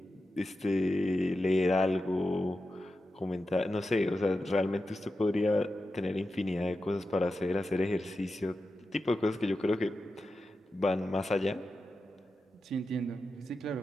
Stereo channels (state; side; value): normal; both; correlation 0.91